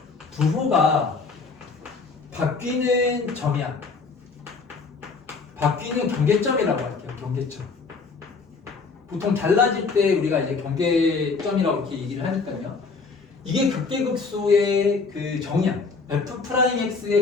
부호가 바뀌는 점이야. 바뀌는 경계점이라고 할게요. 경계점. 보통 달라질 때 우리가 이제 경계점이라고 이렇게 얘기를 하니까요. 이게 극대극소의 그 정의야.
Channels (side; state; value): right; quieter; 4.5 dB